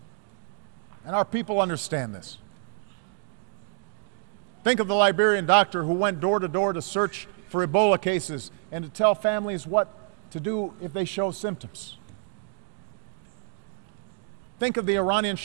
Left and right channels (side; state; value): left; silent; digital silence